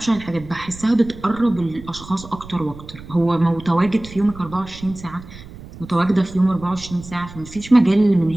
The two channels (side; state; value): right; noise; rumble, 16 dB below the sound